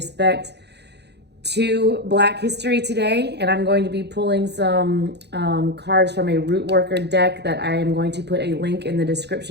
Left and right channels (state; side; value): late; left; 0.49 ms